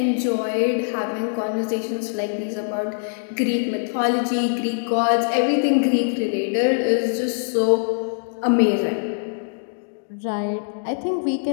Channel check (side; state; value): right; silent; digital silence